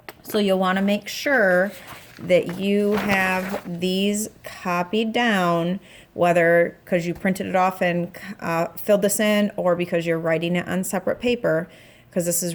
So you'll want to make sure that you have these copied down, whether because you printed it off and filled this in or because you're writing it on separate paper, because this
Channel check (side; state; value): both; identical; correlation 1.00